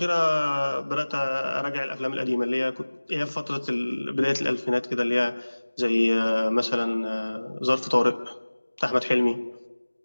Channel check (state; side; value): inverted; both; correlation -1.00